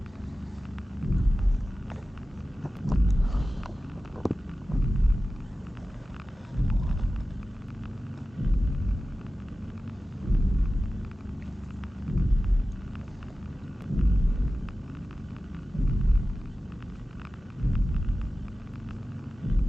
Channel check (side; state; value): both; normal; correlation 0.95